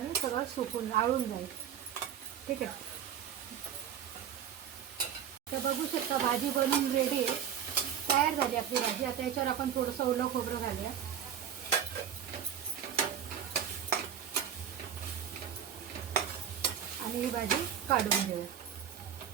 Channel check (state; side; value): quieter; left; 8.9 dB